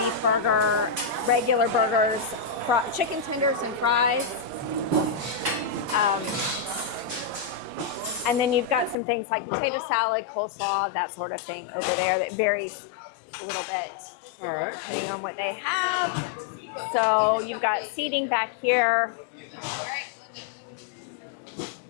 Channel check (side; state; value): right; drops out; at 9.0 s